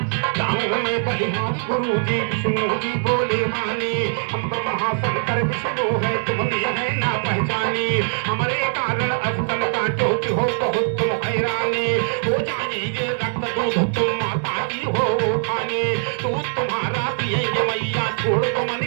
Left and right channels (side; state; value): left; silent; 63 dB below the other